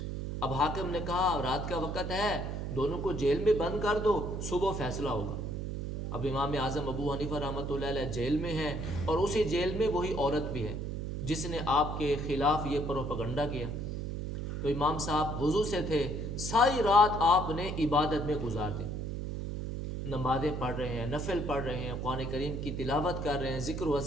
اب حاکم نے کہا رات کا وقت ہے، دونوں کو جیل میں بند کر دو، صبح فیصلہ ہوگا. اب امام اعظم ابو حنیفہ رحمۃ اللہ علیہ جیل میں ہیں اور اسی جیل میں وہی عورت بھی ہے جس نے آپ کے خلاف یہ پروپیگنڈا کیا. تو امام صاحب وضو سے تھے، ساری رات آپ نے عبادت میں گزار دی، نمازیں پڑھ رہے ہیں، نفل پڑھ رہے ہیں، قرآن کریم کی تلاوت کر رہے ہیں، ذکر و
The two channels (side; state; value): right; noise; hum, 4 dB below the sound